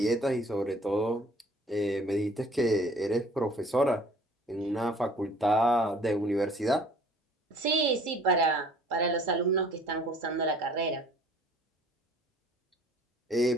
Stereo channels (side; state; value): both; normal; correlation 0.53